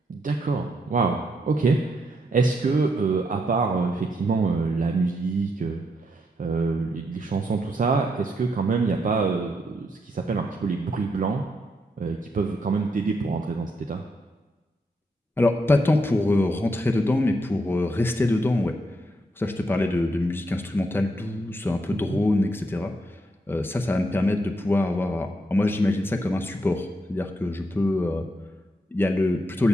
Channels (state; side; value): normal; both; correlation 0.79